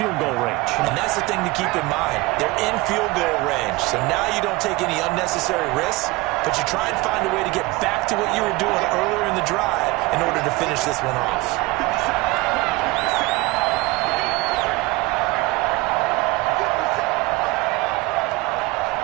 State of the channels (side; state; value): left; quieter; 22.3 dB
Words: goal range. And that's the thing to keep in mind. They're in field goal range. So now you don't take any unnecessary risks, but you try and find a way to get back to what you were doing earlier in the drive in order to finish this one off.